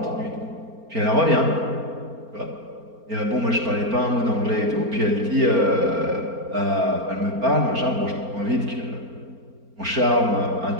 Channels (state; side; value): late; left; 4.4 ms